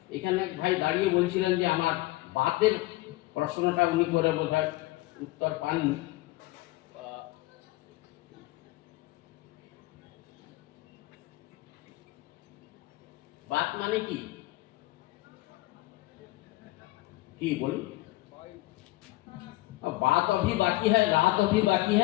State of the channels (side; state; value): right; quieter; 19.3 dB